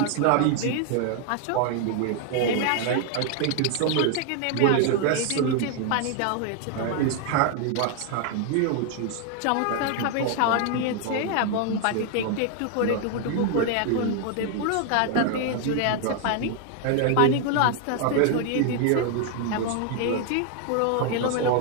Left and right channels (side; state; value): both; different; correlation 0.00